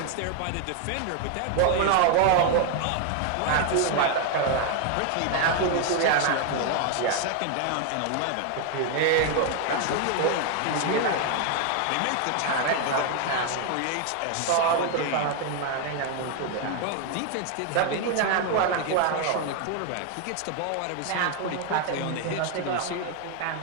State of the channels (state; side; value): different; both; correlation 0.01